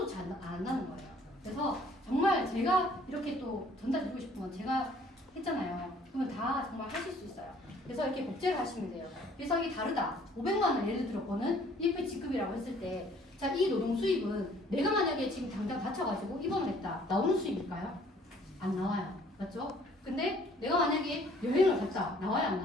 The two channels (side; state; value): both; normal; correlation 0.58